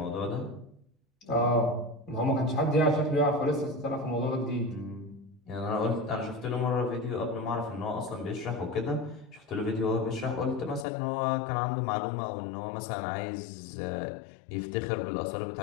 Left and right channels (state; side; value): drops out; right; at 10.9 s